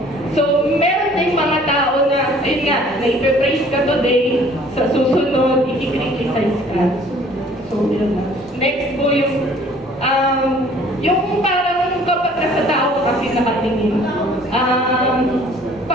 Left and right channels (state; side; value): normal; both; correlation 0.54